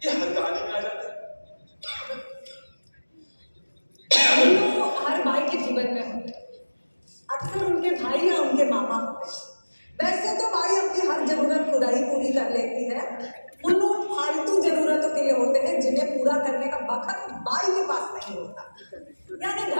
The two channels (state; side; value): inverted; both; correlation -1.00